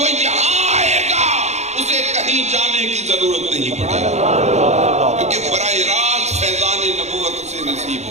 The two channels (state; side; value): late; left; 0.32 ms